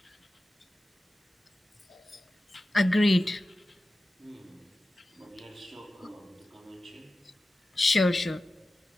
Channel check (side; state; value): both; normal; correlation 0.94